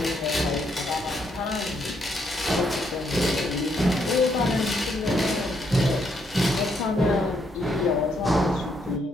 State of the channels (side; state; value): both; normal; correlation 0.74